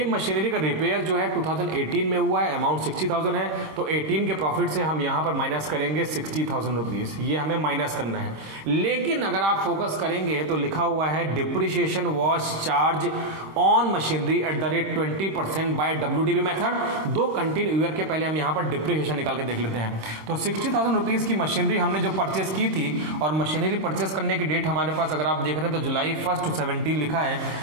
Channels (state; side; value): late; left; 26 ms